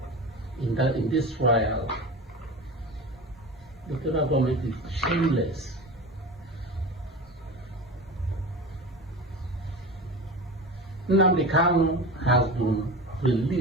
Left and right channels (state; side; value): normal; both; correlation 0.30